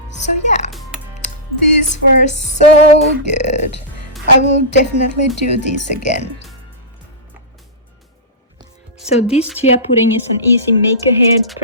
So yeah, these were so good. I will definitely do this again. So this chia pudding is an easy make-ahead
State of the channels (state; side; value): normal; both; correlation -0.17